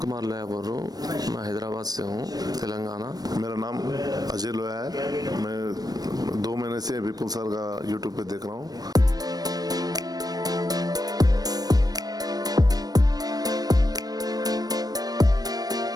लोया बोल रहा हूँ, मैं हैदराबाद से हूँ, तेलंगाना। मेरा नाम अजय लोया है, मैं 2 महीने से विपुल सर का यूट्यूब पे देख रहा हूँ।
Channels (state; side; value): late; left; 0.19 ms